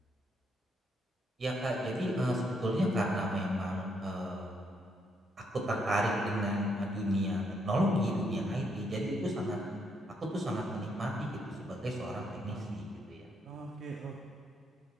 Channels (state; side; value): normal; both; correlation 0.74